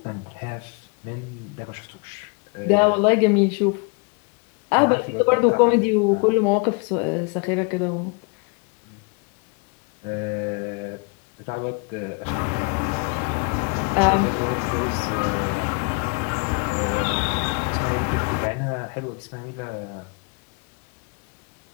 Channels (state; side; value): quieter; right; 34.2 dB